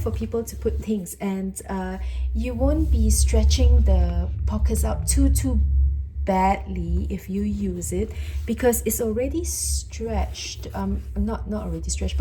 people to put things, and you won't be stretching the pockets out too badly if you use it, because it's already stretched. Not already stretched,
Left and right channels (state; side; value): identical; both; correlation 1.00